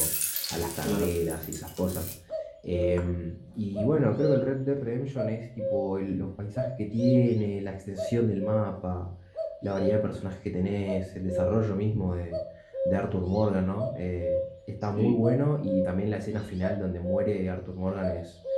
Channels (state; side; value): identical; both; correlation 1.00